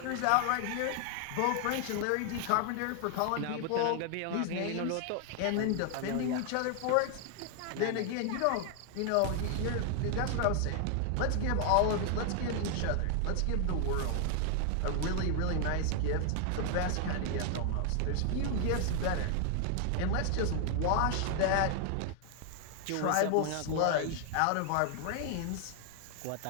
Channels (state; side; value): different; both; correlation 0.00